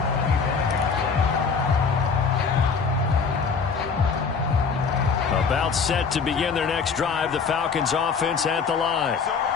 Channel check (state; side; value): quieter; right; 5.5 dB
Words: About set to begin their next drive, the Falcons offense at the line.